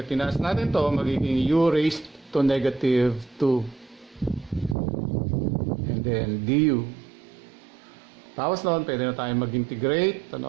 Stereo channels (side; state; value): left; drops out; at 4.8 s